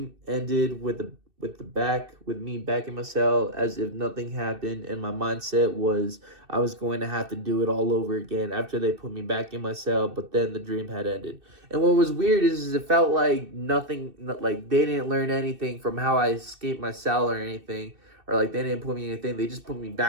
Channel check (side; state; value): left; late; 2.6 ms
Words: ended with me back in my cell as if nothing happened. And my mindset was I was going to have to do it all over again after they put me back in my cell. But then the dream had ended. And what was weird is it felt like nothing, like they didn't learn anything from how I escaped my cell or anything. Or like they didn't put me in anything. They just put me